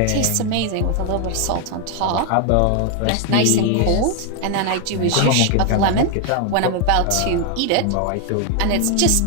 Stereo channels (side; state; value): both; different; correlation 0.00